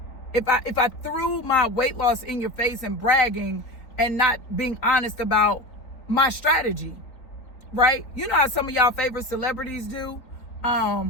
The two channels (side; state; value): right; late; 3.7 ms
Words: If I threw my weight loss in your face and bragging and not being honest about my strategy. Right? You know how some of y'all favorite celebrities do?